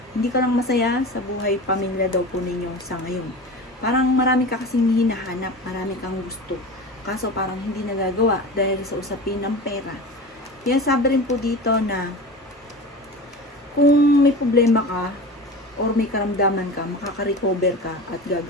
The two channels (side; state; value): both; normal; correlation 0.32